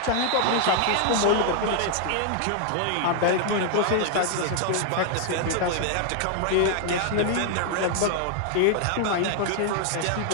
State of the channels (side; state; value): both; different; correlation 0.00